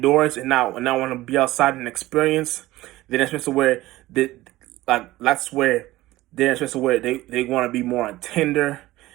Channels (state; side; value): quieter; left; 17.3 dB